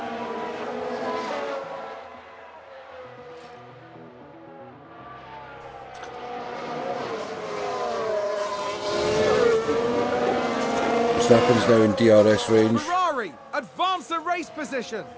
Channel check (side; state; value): both; identical; correlation 1.00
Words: Verstappen's now in DRS range. Ferrari advance the race position.